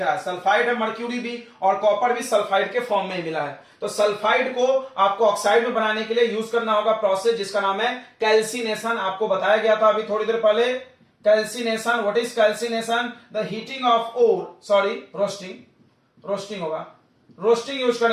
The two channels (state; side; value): identical; both; correlation 1.00